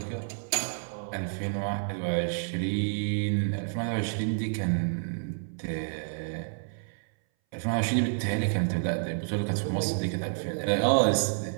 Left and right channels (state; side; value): silent; left; 58 dB below the other